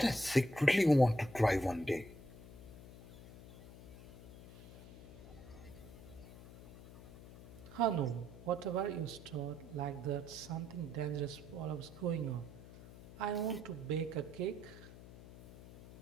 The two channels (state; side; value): noise; left; hum, 17 dB below the sound